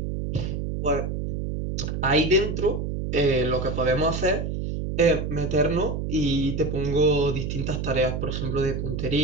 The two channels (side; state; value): right; noise; hum, 3 dB below the sound